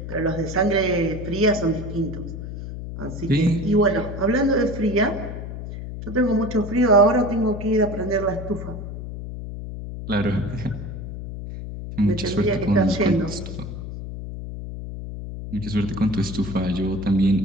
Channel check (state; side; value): noise; left; hum, 8 dB below the sound